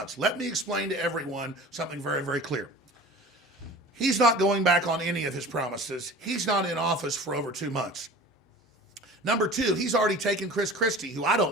Let me explain to everyone something very, very clear. He's not going back on any of his promises. He's not in office for over 2 months. Number two, he's already taken Chris Christie, who I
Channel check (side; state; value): both; normal; correlation 0.40